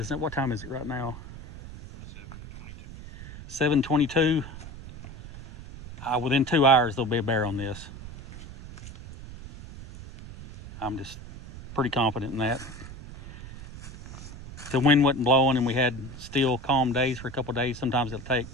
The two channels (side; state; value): right; noise; rumble, 14 dB below the sound